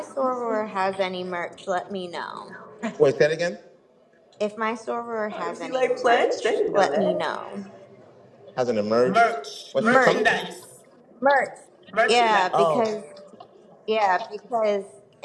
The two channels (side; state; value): both; identical; correlation 1.00